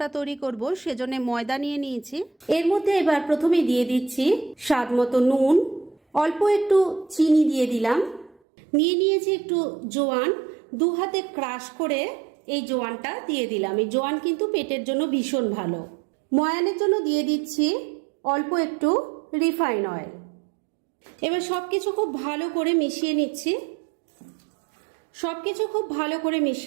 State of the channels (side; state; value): left; drops out; at 8.3 s